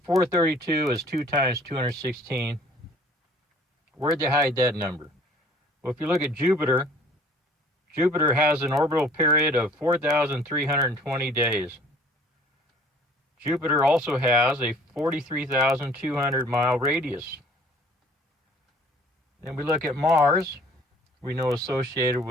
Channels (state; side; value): normal; both; correlation 0.53